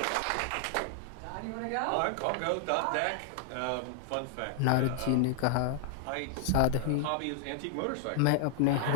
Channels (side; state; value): both; different; correlation 0.00